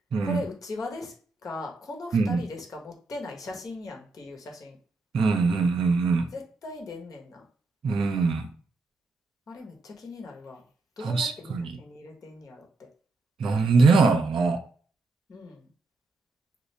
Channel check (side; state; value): left; quieter; 3.5 dB